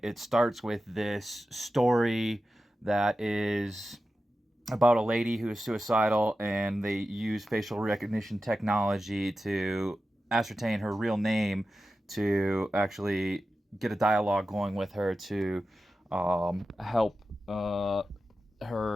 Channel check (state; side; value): normal; both; correlation 0.92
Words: it starts with this story that is about a lady who is suicidal, and they use facial recognition technology to ascertain her real name to actually get a dialogue going with her to help